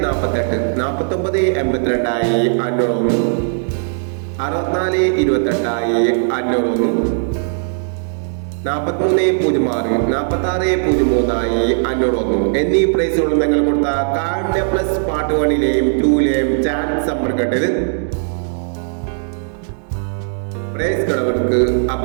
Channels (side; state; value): left; silent; digital silence